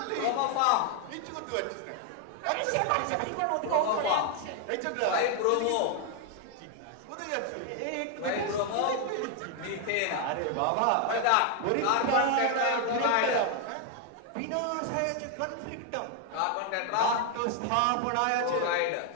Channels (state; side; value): different; both; correlation 0.00